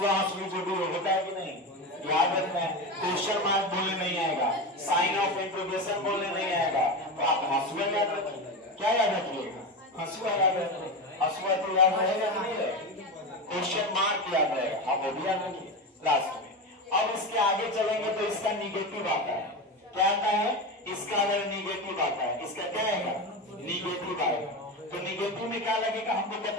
जो भी हो, होता है कि नहीं? याद याद रखना है, क्वेश्चन मार्क बोलने नहीं आएगा, साइन ऑफ इंट्रोगेशन बोलने नहीं आएगा, तो आप हंसुआ याद रखिए। क्या याद रखिएगा? हंसुआ याद रखिए। हंसुआ तो याद रहेगा कि नहीं रहेगा? क्वेश्चन मार्क याद रहेगा, आप वो भी याद रखिए लास्ट में। अब इसके आगे चलेंगे तो इसका निगेटिव आता है। क्या आता है? इसका अगर निगेटिव आता है, इसका क्या आएगा? निगेटिव आएगा। तो निगेटिव में क्या लगेगा? हमको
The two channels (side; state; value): both; normal; correlation 0.20